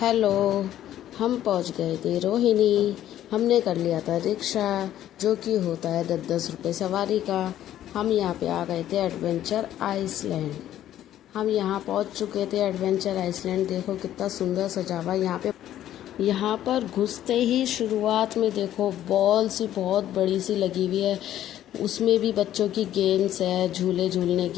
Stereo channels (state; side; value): quieter; right; 12.1 dB